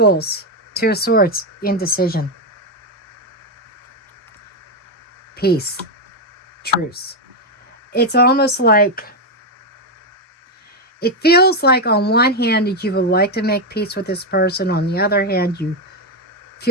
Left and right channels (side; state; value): both; normal; correlation 0.05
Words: Two of Swords, indecision. Peace. Truce. It's almost like, it feels like on one hand that you would like to make peace with this person. On the other hand, you